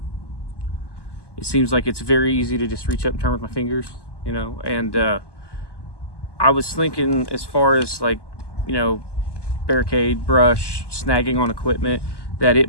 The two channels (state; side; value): late; right; 1.1 ms